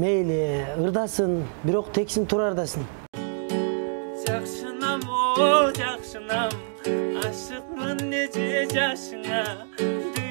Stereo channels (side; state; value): left; silent; 61 dB below the other